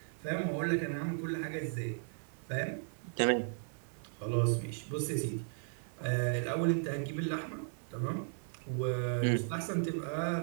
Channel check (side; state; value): left; silent; 54 dB below the other